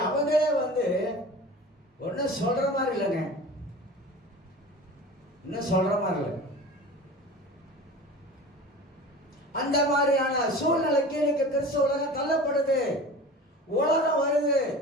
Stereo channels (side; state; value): both; normal; correlation 0.37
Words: அவங்களே ஒன்னும் சொல்ற மாதிரி இல்லைங்க. இன்னும் சொல்ற மாதிரி இல்லை. அந்த மாதிரியான சூழ்நிலைக்கு இன்னைக்கு கிறிஸ்துவ உலகம் தள்ளப்படுது. உலகம் வருது.